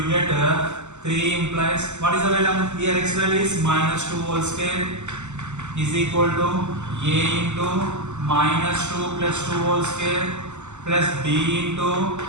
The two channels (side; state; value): left; late; 0.83 ms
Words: get 3 implies, what is the value? Here x value is minus 2 whole square is equal to a into minus 2 plus 2 whole square plus b into